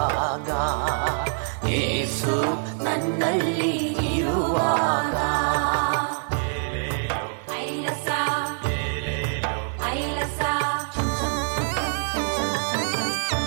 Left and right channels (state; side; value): silent; left; digital silence